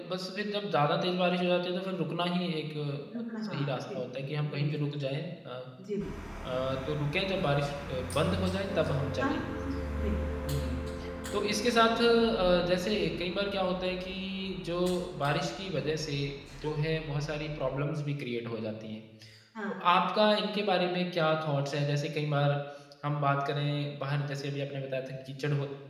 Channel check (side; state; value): both; identical; correlation 1.00